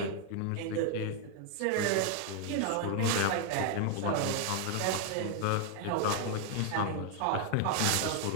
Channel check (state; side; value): different; both; correlation 0.00